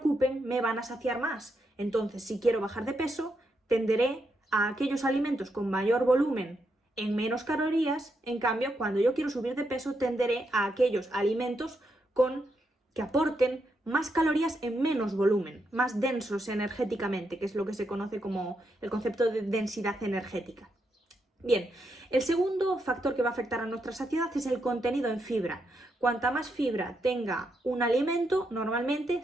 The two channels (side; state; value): both; normal; correlation 0.81